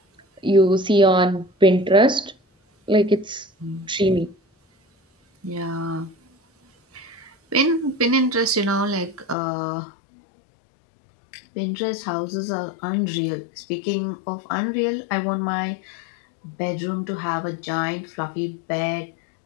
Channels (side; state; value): right; drops out; at 9.3 s